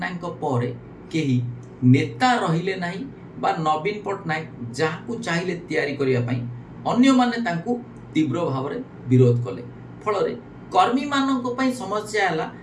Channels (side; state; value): both; identical; correlation 1.00